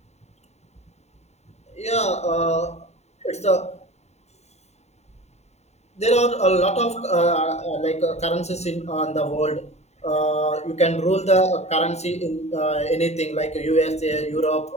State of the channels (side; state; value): right; late; 0.32 ms